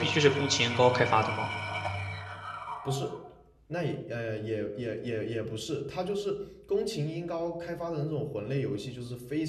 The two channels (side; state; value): both; identical; correlation 1.00